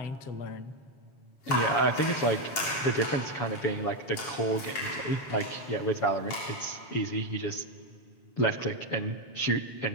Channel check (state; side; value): late; right; 7.4 ms